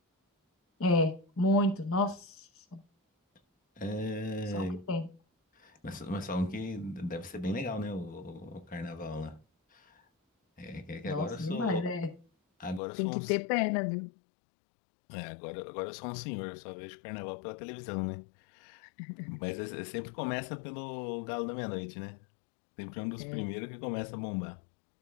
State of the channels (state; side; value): drops out; right; at 12.8 s